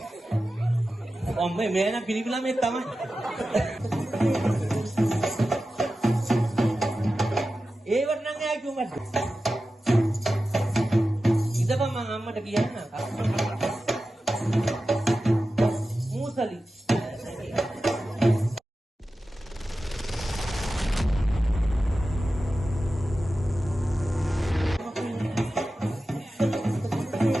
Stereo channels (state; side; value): normal; both; correlation 0.93